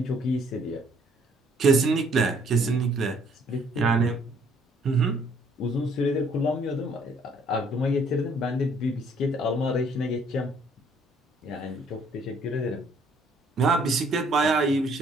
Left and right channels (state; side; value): normal; both; correlation 0.63